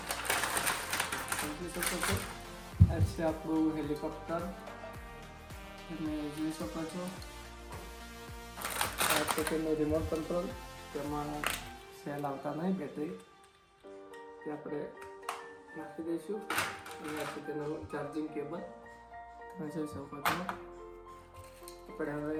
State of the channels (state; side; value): identical; both; correlation 1.00